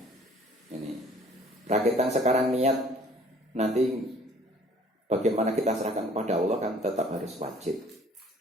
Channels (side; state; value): both; normal; correlation 0.54